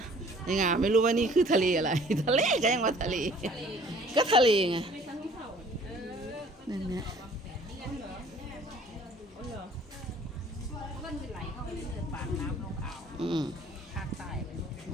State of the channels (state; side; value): normal; both; correlation 0.53